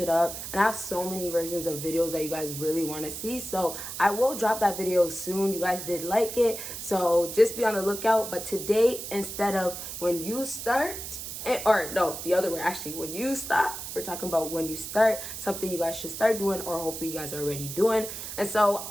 up. And I have so many versions of videos that you guys really want to see. So I will drop that video soon. You guys did like it. So just be on the lookout. But today, instead of when you start, or no, the other way, actually, when you stop, we're talking about when you start, something you guys should start doing, or hopefully you guys are already doing. And so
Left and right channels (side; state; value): right; noise; hiss, 8 dB below the sound